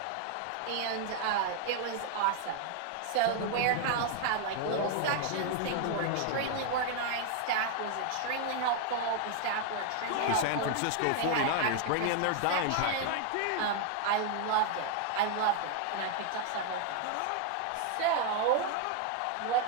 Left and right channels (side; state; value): both; different; correlation 0.00